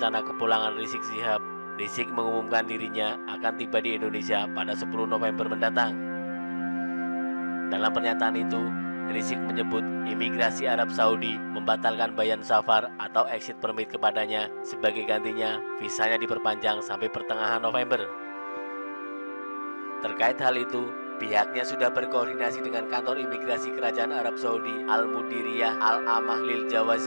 kepulangan Rizik Syihab. Rizik mengumumkan dirinya akan tiba di Indonesia pada 10 November mendatang. Dalam pernyataan itu, Rizik menyebut imigrasi Arab Saudi membatalkan bayan safar atau exit permit kepadanya, sebagai gantinya visanya diperpanjang sampai pertengahan November. Terkait hal itu, pihaknya sudah berkoordinasi dengan kantor imigrasi Kerajaan Arab Saudi Al-Mudiriyah Al-Amah Lil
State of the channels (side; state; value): both; inverted; correlation -1.00